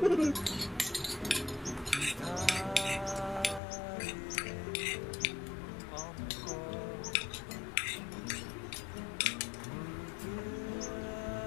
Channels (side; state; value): right; drops out; at 3.6 s